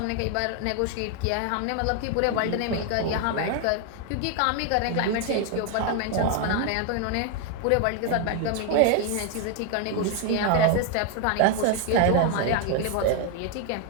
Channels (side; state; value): both; different; correlation 0.01